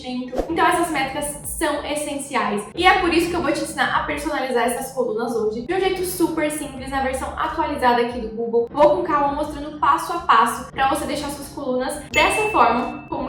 Então essas métricas são essenciais. E é por isso que eu vou te ensinar a personalizar essas colunas hoje, de um jeito super simples, na versão atualizada aqui do Google. Vou com calma mostrando passo a passo para você deixar suas colunas dessa forma, como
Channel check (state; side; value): identical; both; correlation 1.00